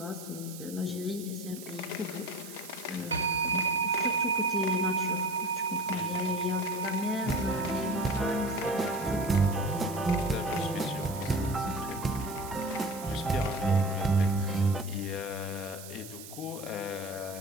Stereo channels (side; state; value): right; noise; hiss, 14 dB below the sound